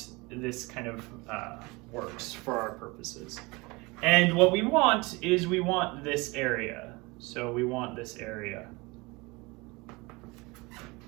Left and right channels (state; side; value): quieter; left; 24.8 dB